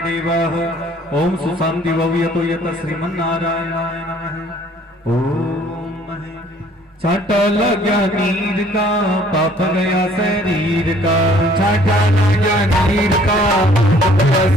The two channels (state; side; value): normal; both; correlation 0.58